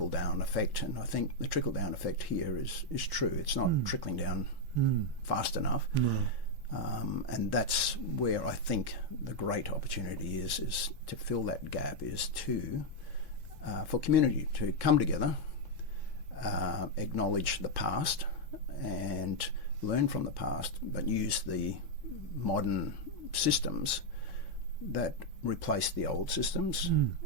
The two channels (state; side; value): normal; both; correlation 0.01